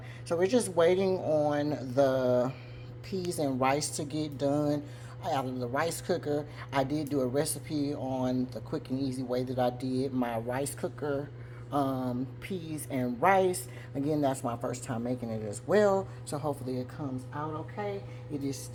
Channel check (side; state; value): both; identical; correlation 1.00